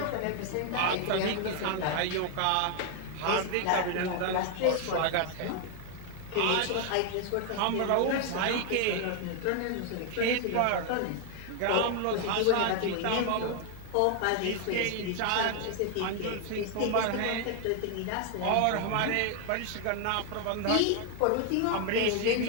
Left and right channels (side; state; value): both; different; correlation 0.00